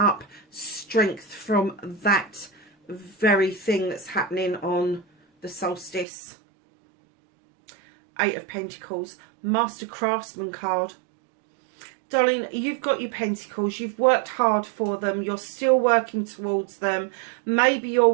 strength from that very thing that's happening on the solstice. 8 of Pentacles, Master Craftsman card. Darling, you've got your pentacles. You've worked hard for them. You're still working towards them. Maybe you're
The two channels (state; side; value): drops out; left; at 6.1 s